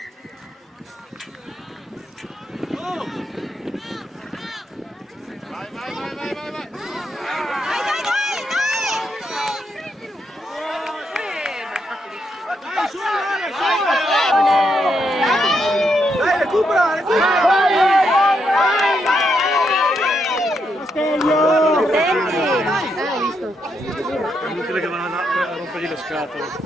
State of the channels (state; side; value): normal; both; correlation 0.80